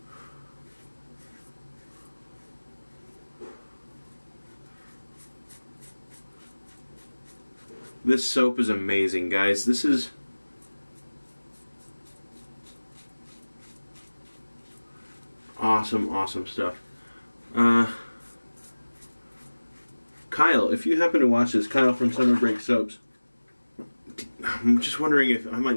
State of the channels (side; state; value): both; inverted; correlation -1.00